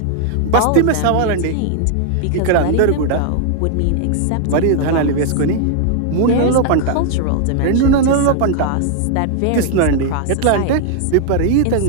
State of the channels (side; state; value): both; different; correlation 0.00